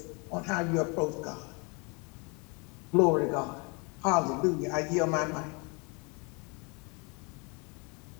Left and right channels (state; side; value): quieter; right; 31.7 dB